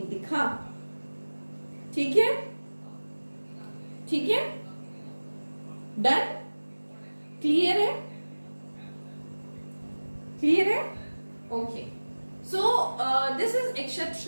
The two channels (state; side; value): inverted; both; correlation -1.00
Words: दिखा। ठीक है, ठीक है, डन, क्लियर है, क्लियर है, okay. So this is